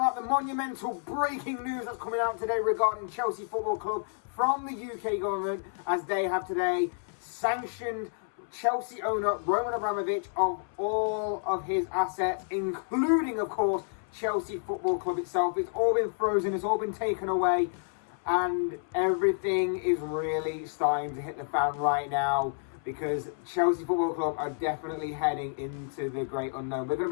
the monumental breaking news that's coming out today regarding Chelsea Football Club from the UK government, as they have today sanctioned Chelsea owner Roman Abramovic of all of his assets, including, of course, Chelsea Football Club itself. It's all been frozen, it's all been taken away, and everything is really starting to hit the fan right now, because Chelsea Football Club are definitely heading into the great unknown. We're going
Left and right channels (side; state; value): right; silent; 58 dB below the other